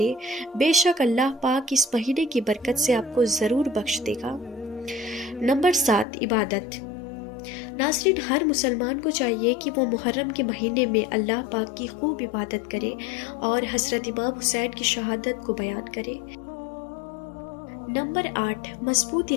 بے شک اللہ پاک اس مہینے کی برکت سے آپ کو ضرور بخش دے گا۔ نمبر 7، عبادت۔ ناظرین، ہر مسلمان کو چاہیے کہ وہ محرم کے مہینے میں اللہ پاک کی خوب عبادت کرے اور حضرت امام حسین کی شہادت کو بیان کرے۔ نمبر 8، مضبوط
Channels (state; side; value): drops out; right; at 6.1 s